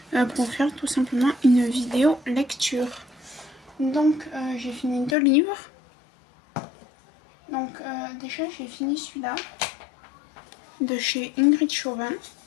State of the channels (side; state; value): right; drops out; at 5.2 s